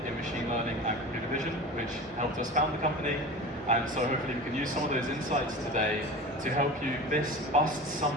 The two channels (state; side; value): normal; both; correlation 0.33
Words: in machine learning and computer vision, which helped us found the company. And so hopefully we can use some of those insights today to help you bust